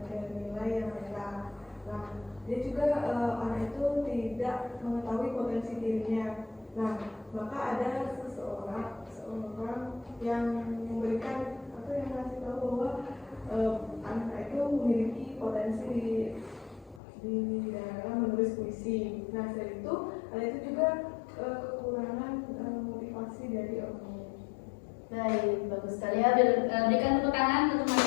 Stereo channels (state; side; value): drops out; right; at 17.0 s